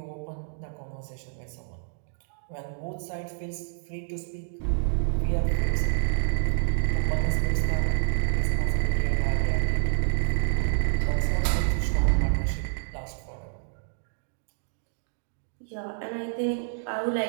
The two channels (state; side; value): silent; left; digital silence